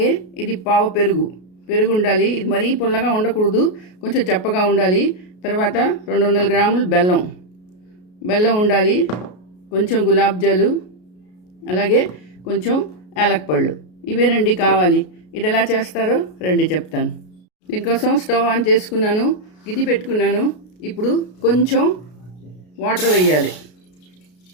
ఇది పావు పెరుగు ఉండాలి. ఇది మరీ పుల్లగా ఉండకూడదు, కొంచెం చప్పగా ఉండాలి. తర్వాత 200 గ్రాములు బెల్లం ఉండాలి. కొంచెం గులాబ్ జాలు, అలాగే కొంచెం యాలక్పళ్ళు. ఇవేనండి కావాలి. ఇది ఎలా చేస్తారో రండి చెప్తాను. దీనికోసం స్టవ్ ఆన్ చేసుకున్నాను, గిది పెట్టుకున్నాను. ఇప్పుడు కొంచెం వాటర్ వేయాలి.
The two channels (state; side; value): late; right; 33 ms